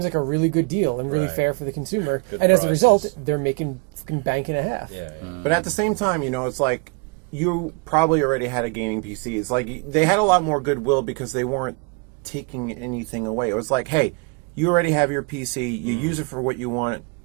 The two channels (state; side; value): quieter; left; 31.1 dB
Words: like a really good deal and really fair for the consumer. Good and as a result, prices. they're making fucking bank and a half. Yeah. But at the same time, it's like you probably already had a gaming PC. It's like they had a lot more goodwill because they weren't taking anything away. It was like, hey, you already have your PC. You use it for what you want,